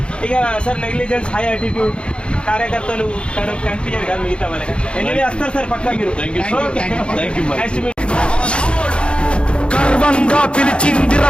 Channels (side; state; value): right; late; 0.056 ms